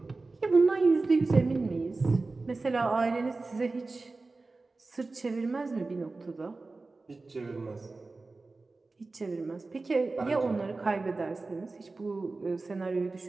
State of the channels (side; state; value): left; quieter; 3.6 dB